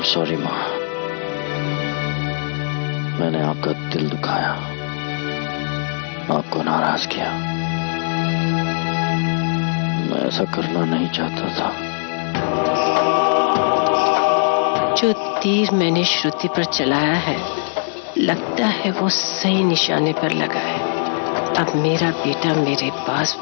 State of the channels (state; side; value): silent; right; 66 dB below the other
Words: sorry माँ, मैंने आपका दिल दुखाया, आपको नाराज किया। मैं ऐसा करना नहीं चाहता था। जो तीर मैंने श्रुति पर चलाया है, लगता है वो सही निशाने पर लगा है। अब मेरा बेटा मेरे पास